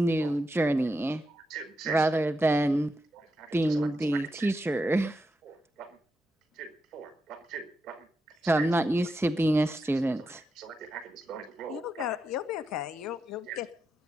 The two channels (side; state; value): both; normal; correlation 0.86